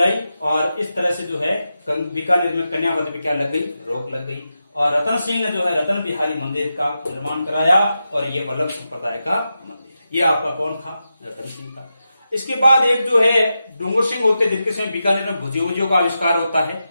और इस तरह से जो है बीकानेर में कन्यावध पे क्या लग गई? रोक लग गई। और रतन सिंह ने जो है रतन बिहारी मंदिर का निर्माण कराया। और ये वल्लभ संप्रदाय का मंदिर। ये आपका कौन था? रतन सिंह था। इसके बाद एक जो है डूंगर सिंह होते, जिनके समय बीकानेर में भुजियों का आविष्कार होता है।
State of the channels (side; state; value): both; inverted; correlation -0.89